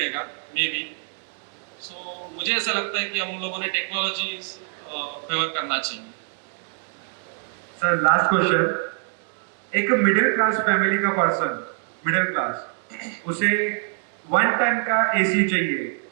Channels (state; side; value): silent; left; 56 dB below the other